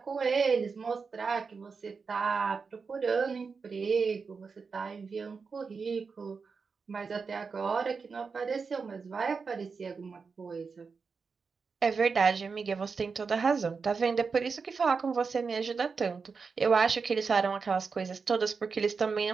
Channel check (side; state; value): left; quieter; 5.1 dB